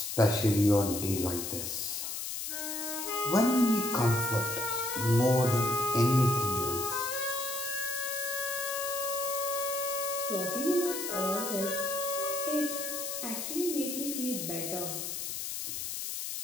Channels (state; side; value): noise; left; hiss, 4 dB below the sound